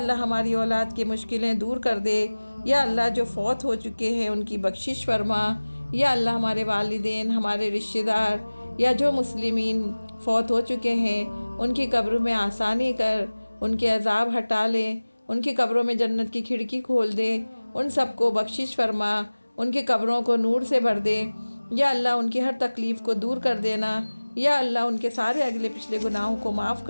ہماری اولاد کی مشکلیں دور کر دے۔ یا اللہ جو فوت ہو چکے ہیں ان کی بخشش فرما۔ یا اللہ ہمارے والدین، ہمارے رشتہ دار یا جو مسلمین فوت ہو چکے ہیں ان کی قبر میں آسانی کر، ان کے عذاب ہٹا لے، ان کی قبروں میں جنت کی کھڑکی کھول دے، ان سب کو بخشش فرما، ان کی قبروں کو نور سے بھر دے۔ یا اللہ ان کی ہر تکلیف کو دور کر دینا۔ یا اللہ ان کے سارے اگلے پچھلے گناہوں کو معاف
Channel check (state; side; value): inverted; both; correlation -1.00